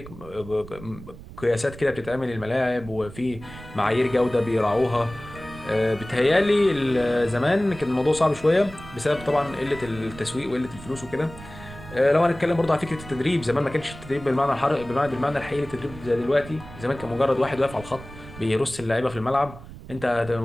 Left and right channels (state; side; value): noise; right; rumble, 16 dB below the sound